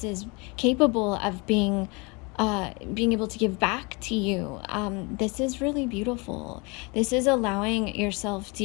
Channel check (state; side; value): quieter; right; 29.0 dB